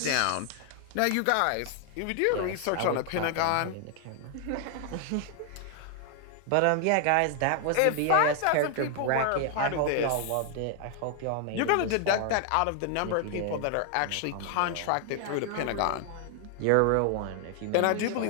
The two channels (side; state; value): both; different; correlation 0.00